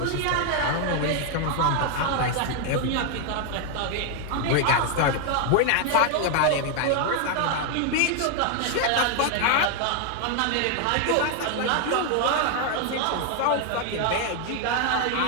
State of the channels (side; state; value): both; different; correlation 0.00